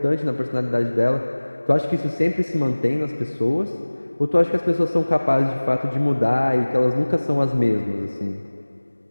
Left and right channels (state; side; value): inverted; both; correlation -1.00